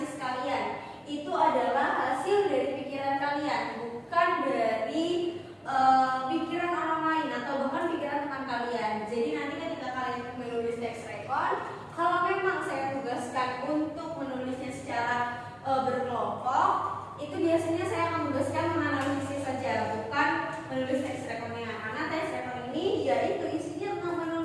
kalian. Itu adalah hasil dari pikiran kalian, bukan dari pikiran orang lain atau bahkan pikiran teman kalian. Jadi nanti ketika kalian menulis teks rekon, kalau memang saya tugaskan untuk menulisnya secara berkelompok, itu biasanya saya akan tugaskan menganalisis saja, bukan menulis teks rekonnya. Karena teks rekon ini yaitu isinya tentang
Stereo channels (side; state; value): both; identical; correlation 1.00